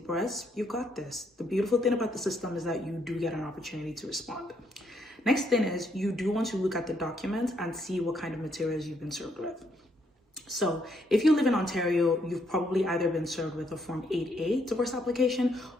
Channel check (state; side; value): normal; both; correlation 0.73